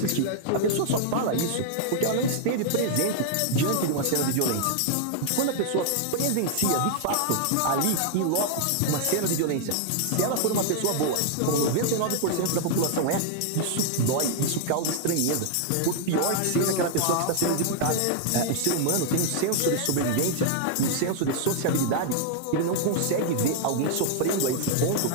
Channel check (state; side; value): different; both; correlation 0.00